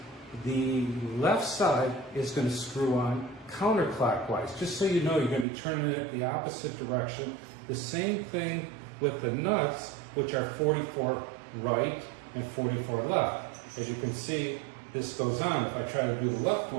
the left side is going to screw on counterclockwise. Just so you know, you're going to be turning it the opposite direction. The same thing with the nuts, which are 44 right and 44 left. As you can see, this goes on. If I try to do the left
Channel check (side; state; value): left; drops out; at 5.5 s